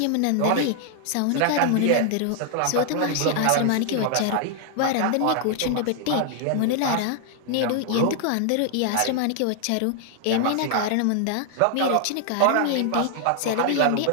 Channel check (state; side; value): different; both; correlation 0.00